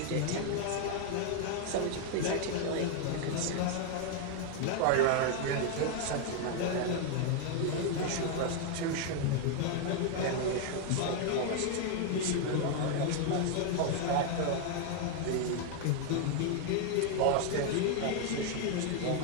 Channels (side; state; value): both; different; correlation 0.00